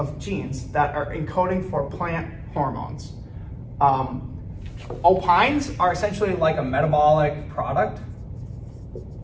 genes that are encoding for plant hormones. Opines are essentially like a metabolic product.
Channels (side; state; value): both; identical; correlation 1.00